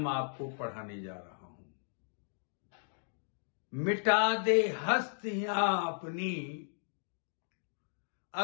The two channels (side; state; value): right; silent; digital silence